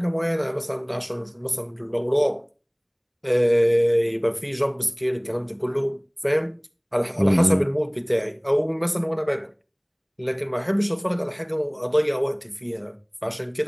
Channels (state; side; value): identical; both; correlation 1.00